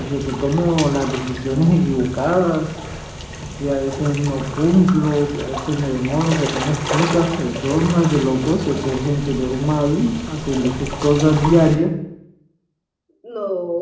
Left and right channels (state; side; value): identical; both; correlation 1.00